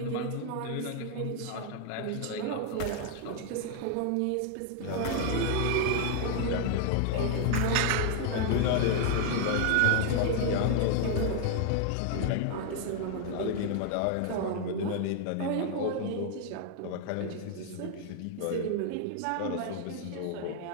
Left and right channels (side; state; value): both; different; correlation 0.00